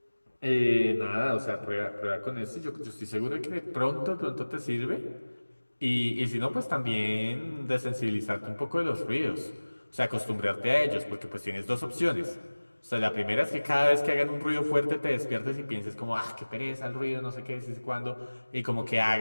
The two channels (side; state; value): both; inverted; correlation -1.00